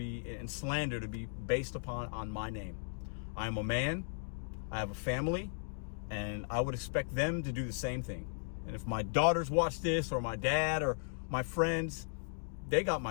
slander to be based on my name. I am a man. I have a family, and I would expect them to do the same thing. And if my daughters watch this, or my dad, or my friends, they got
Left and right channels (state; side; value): silent; right; digital silence